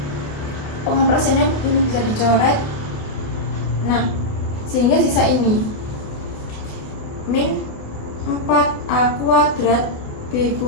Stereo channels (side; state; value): right; late; 28 ms